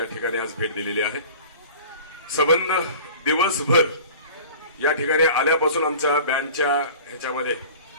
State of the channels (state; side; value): inverted; both; correlation -0.41